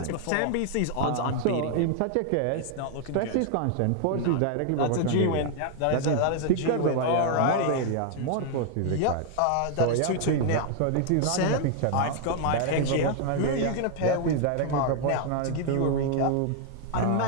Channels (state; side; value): different; both; correlation 0.00